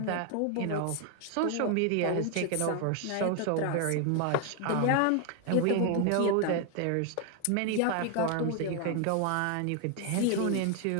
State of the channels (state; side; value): different; both; correlation 0.01